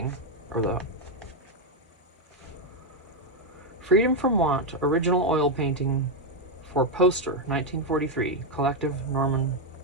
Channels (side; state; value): both; normal; correlation 0.04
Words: or the Freedom from Want, original oil painting for poster, 1943, collection Norman